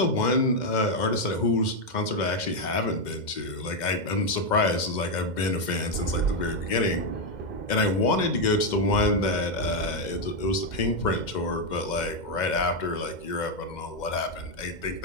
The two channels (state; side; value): late; right; 2.1 ms